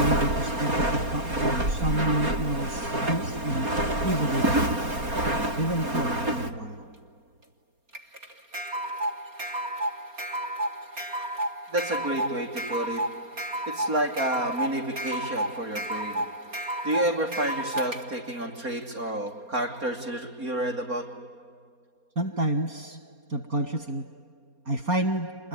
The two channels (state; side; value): late; left; 4.3 ms